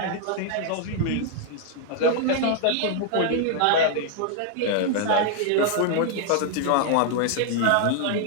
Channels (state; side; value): different; both; correlation 0.00